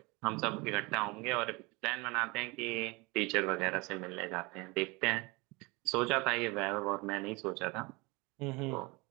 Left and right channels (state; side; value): quieter; left; 25.8 dB